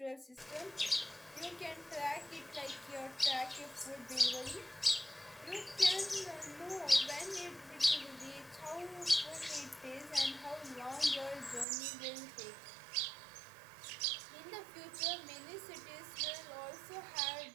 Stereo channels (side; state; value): left; drops out; at 11.7 s